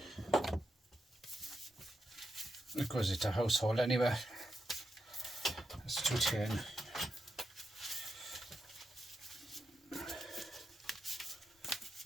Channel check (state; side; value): normal; both; correlation 0.86